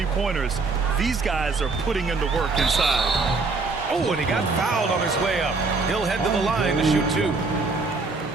These guys are putting in the work inside. Oh, and he got fouled on his way up. He'll head to the line to shoot 2.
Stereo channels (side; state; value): left; quieter; 3.9 dB